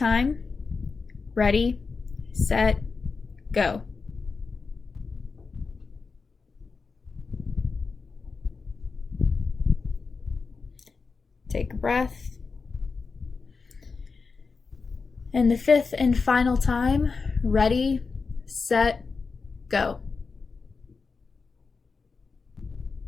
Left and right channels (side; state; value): right; quieter; 4.6 dB